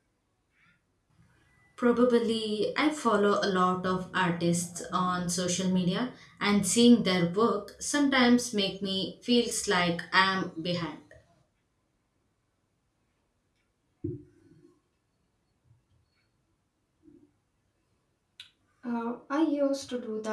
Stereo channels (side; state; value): both; identical; correlation 1.00